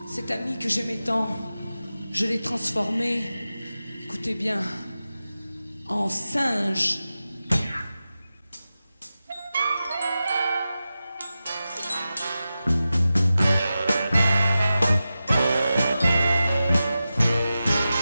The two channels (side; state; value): both; inverted; correlation -0.93